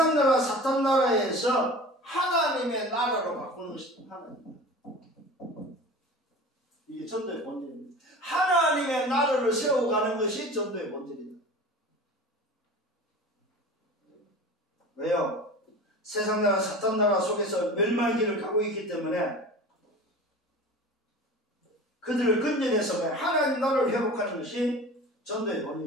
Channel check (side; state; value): both; normal; correlation 0.37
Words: 나라 사탄 나라에서 하나님의 나라로 바꾸는 것입니다. 하나님. 이게 전도의 본질입니다. 하나님의 나라를 세워가는 것이 전도의 본질이다. 왜요? 세상 나라 사탄 나라 속에서 멸망의 길을 가고 있기 때문에 그들을 건져내서 하나님 나라를 회복하는 것이 전도의